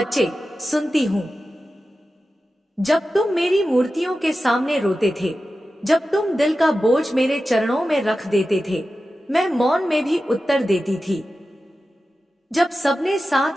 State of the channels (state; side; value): normal; both; correlation 0.93